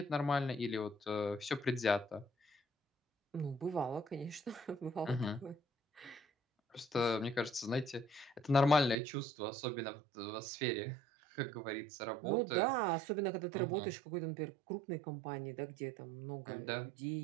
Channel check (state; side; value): drops out; left; at 9.0 s